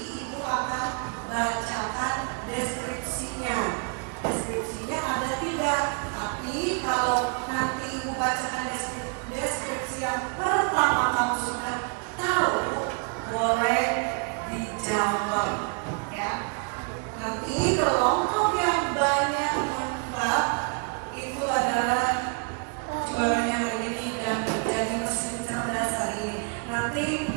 Ibu akan bacakan deskripsinya. Deskripsinya ada 3, tapi kalau nanti Ibu bacakan deskripsi yang pertama kamu sudah tahu, boleh dijawab ya. Nanti kelompok yang banyak menebak itu adalah juaranya hari ini dan menjadi mesin cerdas hari ini. Nanti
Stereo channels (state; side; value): quieter; left; 35.0 dB